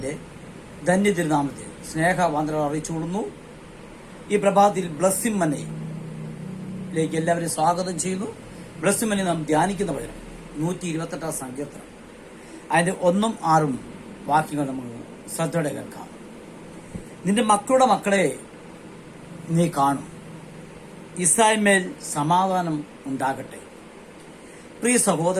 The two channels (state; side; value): identical; both; correlation 1.00